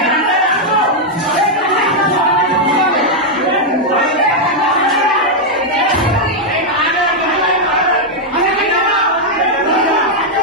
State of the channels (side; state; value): both; normal; correlation -0.02